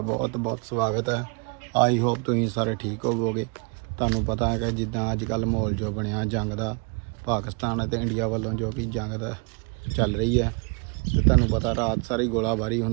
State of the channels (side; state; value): left; quieter; 34.7 dB